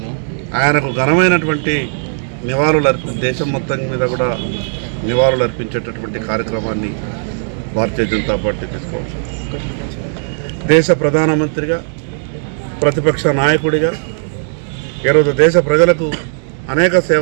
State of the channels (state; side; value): silent; left; digital silence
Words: ఆయనకు ఘనమైనటువంటి దేశం మొత్తం మీద కూడా నివాళులు అర్పించేటటువంటి కార్యక్రమాన్ని భారతీయ జనతా పార్టీ తీసుకోవాలి. దేశ ప్రధానమంత్రిగా, ప్రతిపక్ష నాయకుడిగా ఈరోజు దేశ ప్రజలకు అనేక